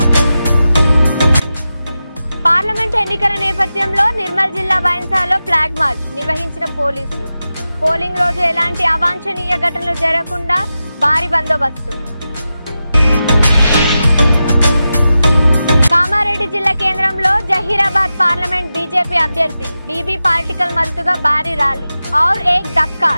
పార్లమెంట్ ఎన్నికల నేపథ్యంలో నిర్మల్ జిల్లా బైన్సాలో ఫ్లాగ్ మార్చ్ నిర్వహించిన పోలీసులు. పోలింగ్ రోజు ఎలాంటి అవాంఛనీయ ఘటనలు జరగకుండా భారీ బందోబస్తు. కామారెడ్డి జిల్లా కేంద్రంలో జహీరాబాద్ పార్లమెంట్ బీజేపీ అభ్యర్థి బీబీ పాలిటికల్ మద్దతుగా భారీ ర్యాలీ. ఔర్ ఏక్ దక్కా,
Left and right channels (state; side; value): inverted; both; correlation -0.92